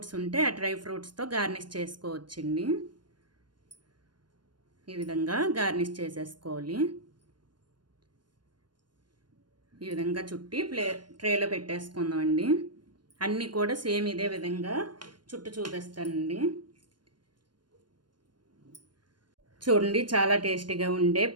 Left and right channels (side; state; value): left; late; 0.71 ms